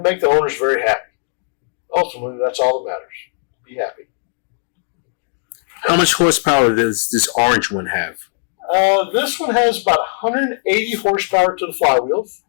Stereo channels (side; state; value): right; silent; digital silence